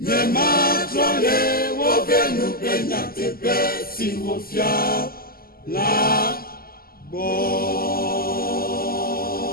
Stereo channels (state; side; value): late; right; 0.43 ms